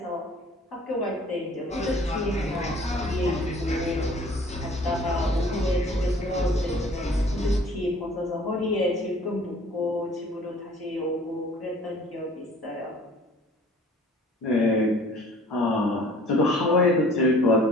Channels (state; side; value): normal; both; correlation 0.51